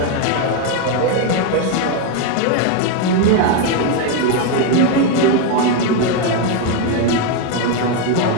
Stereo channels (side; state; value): both; different; correlation 0.02